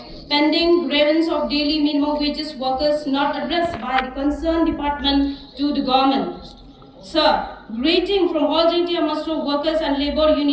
pending grievance of daily minimum wages workers not addressed by the concerned department to the government. Sir, greeting from all JNT Amastro Workers and Labour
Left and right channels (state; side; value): identical; both; correlation 1.00